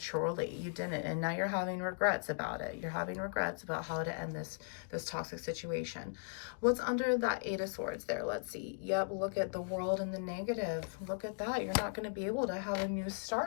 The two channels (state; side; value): silent; right; digital silence